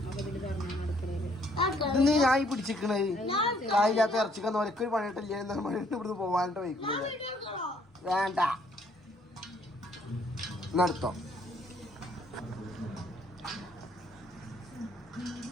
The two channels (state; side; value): normal; both; correlation 0.66